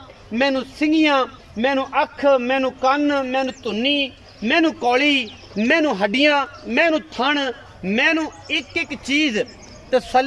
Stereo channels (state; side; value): identical; both; correlation 1.00